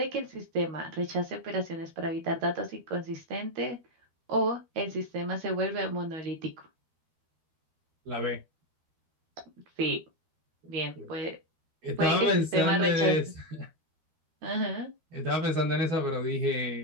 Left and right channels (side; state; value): left; late; 13 ms